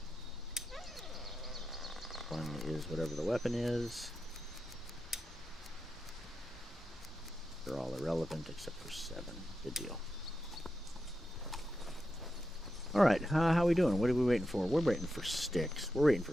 1 is whatever the weapon is. are all irrelevant except for 7. Good deal. Alright, how are we doing? What are we waiting for? We're waiting for sticks. We're waiting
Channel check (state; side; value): normal; both; correlation 0.88